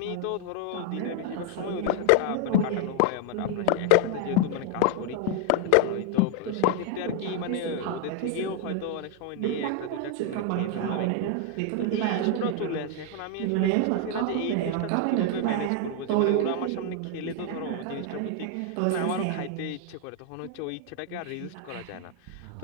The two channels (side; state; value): both; different; correlation 0.00